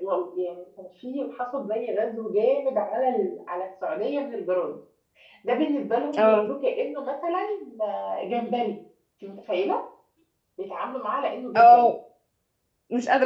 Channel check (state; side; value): identical; both; correlation 1.00